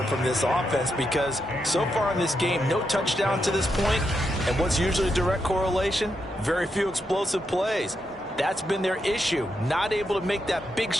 from this offense because so far in this game, no touchdown to this point. And what's usually a direct correlation? Very few explosive plays. That's been their issue. Not able to make that big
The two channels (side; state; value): both; normal; correlation 0.83